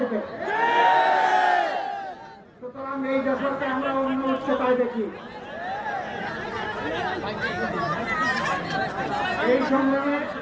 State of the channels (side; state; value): both; identical; correlation 1.00